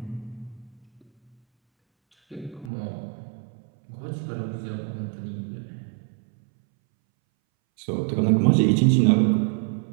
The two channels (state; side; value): drops out; left; at 2.7 s